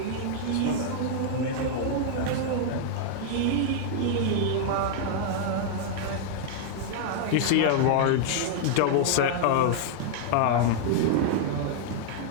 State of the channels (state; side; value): different; both; correlation -0.01